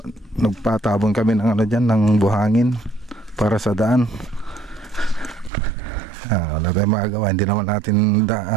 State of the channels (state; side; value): drops out; left; at 5.5 s